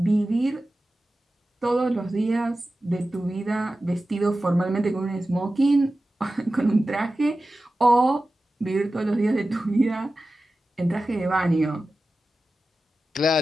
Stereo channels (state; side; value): normal; both; correlation 0.94